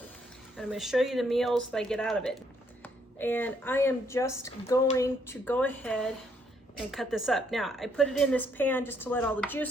And I'm gonna show you the meals that I get out of it. And I am just going to go ahead and cut this up. Now, I put it in this pan just to let all the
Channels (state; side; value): normal; both; correlation 0.71